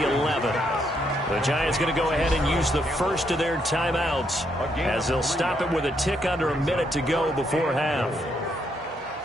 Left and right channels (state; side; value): normal; both; correlation 0.75